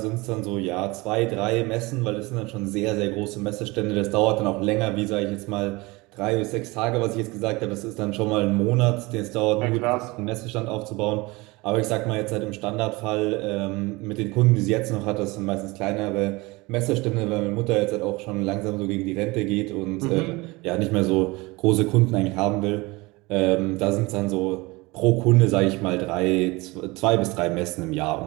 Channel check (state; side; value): quieter; left; 23.4 dB